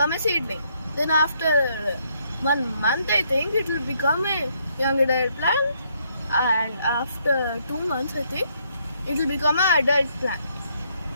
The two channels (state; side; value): inverted; both; correlation -0.72